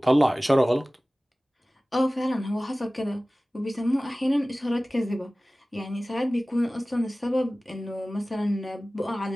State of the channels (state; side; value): normal; both; correlation 0.98